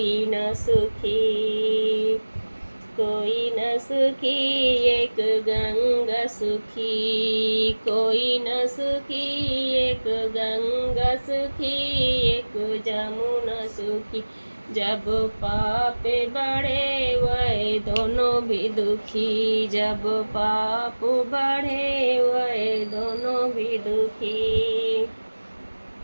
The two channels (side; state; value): both; inverted; correlation -1.00